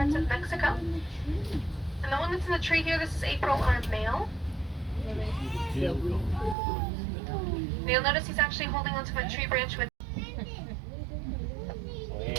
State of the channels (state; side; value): drops out; left; at 6.6 s